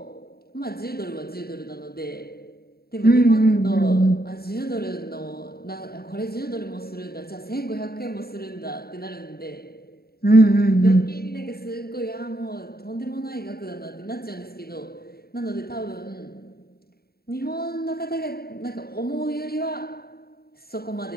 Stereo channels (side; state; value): right; late; 0.45 ms